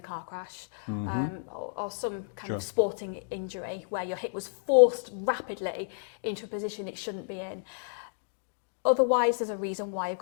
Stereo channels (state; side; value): silent; right; digital silence